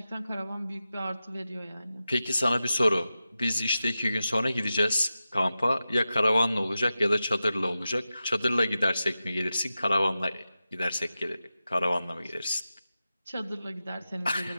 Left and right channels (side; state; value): both; inverted; correlation -0.93